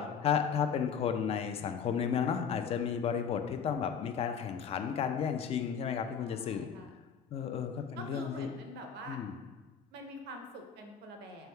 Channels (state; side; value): quieter; right; 7.0 dB